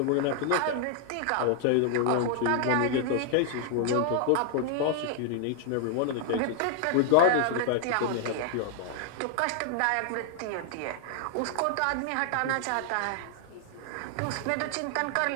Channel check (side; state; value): both; different; correlation 0.00